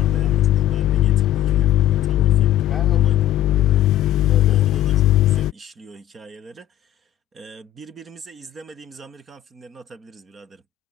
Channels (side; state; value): right; quieter; 13.3 dB